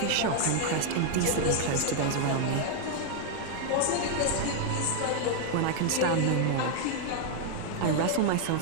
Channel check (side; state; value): both; different; correlation 0.00